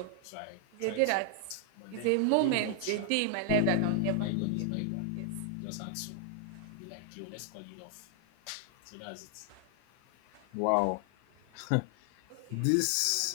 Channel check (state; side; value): different; both; correlation 0.00